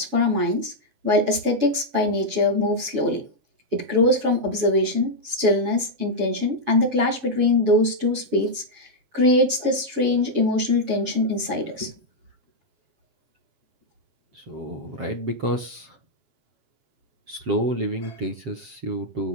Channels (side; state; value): left; late; 7.1 ms